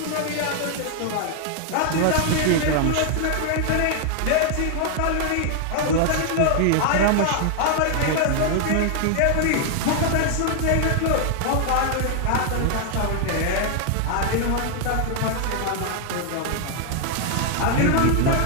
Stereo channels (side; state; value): both; different; correlation 0.00